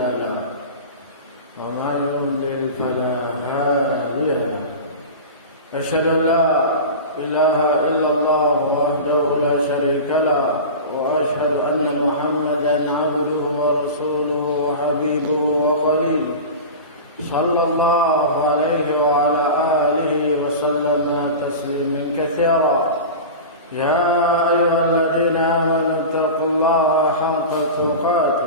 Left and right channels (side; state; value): both; inverted; correlation -0.30